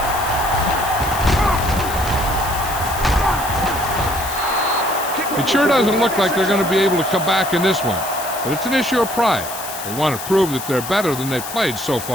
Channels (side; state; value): left; noise; hiss, 9 dB below the sound